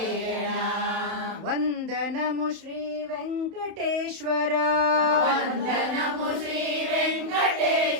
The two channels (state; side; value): late; left; 31 ms